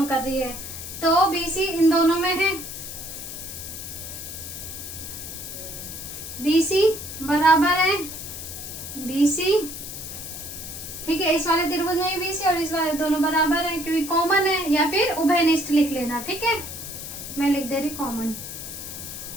कर रही है। तो BC इन दोनों में है, BC बराबर है BC, ठीक है। इस वाले त्रिभुज में BC और इस वाले दोनों बराबर है, क्योंकि कॉमन है, या फिर उभयनिष्ठ लिख लेना, ठीक है। मैं लिख दे रही कॉमन।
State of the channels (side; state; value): left; noise; hiss, 9 dB below the sound